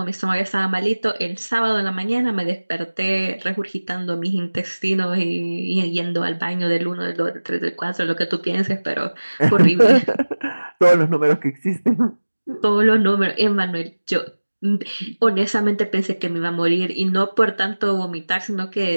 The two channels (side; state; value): both; inverted; correlation -1.00